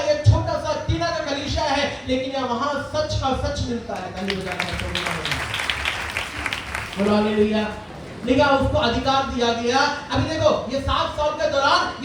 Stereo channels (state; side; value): identical; both; correlation 1.00